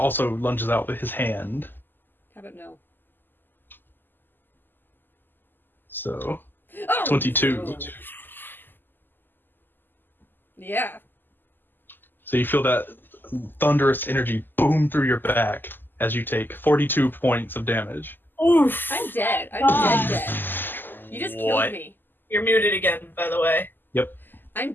lunges out with his hand. How about no? So, Oh! 22. Yeah. So you feel that thunderous energy boom through your back as you take 42 points of damage. Oof. I'm dead. I'm dead. You just killed me. You're muted again, by the way. Yep. I'm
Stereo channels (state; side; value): late; right; 0.091 ms